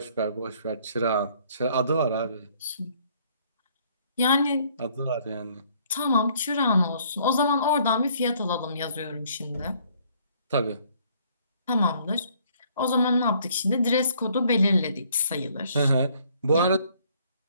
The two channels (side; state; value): both; inverted; correlation -0.63